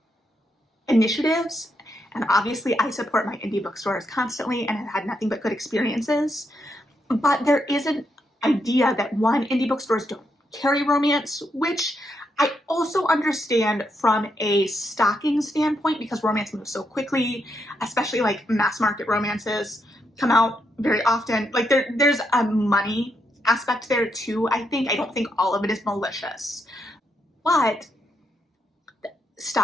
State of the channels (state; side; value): normal; both; correlation 0.80